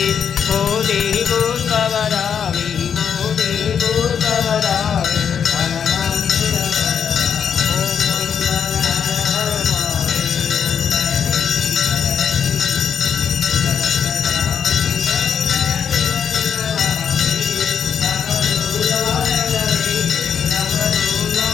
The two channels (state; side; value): quieter; right; 7.6 dB